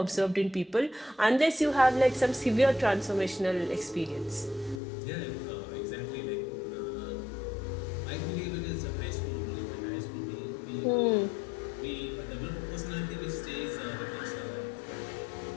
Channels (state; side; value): drops out; right; at 4.8 s